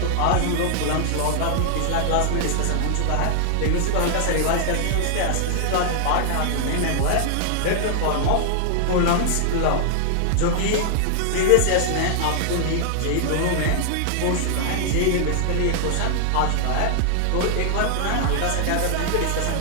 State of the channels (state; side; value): different; both; correlation 0.00